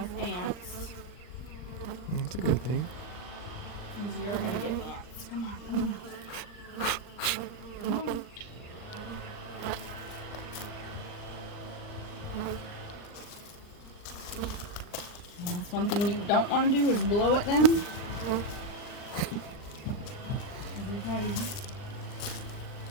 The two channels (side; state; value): right; late; 39 ms